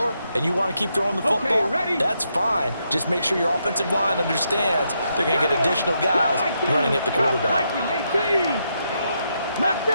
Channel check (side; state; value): both; inverted; correlation -0.80